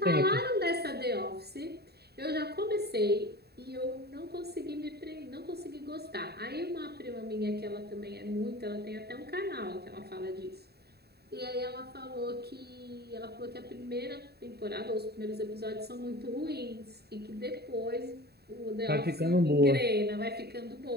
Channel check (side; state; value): left; late; 0.47 ms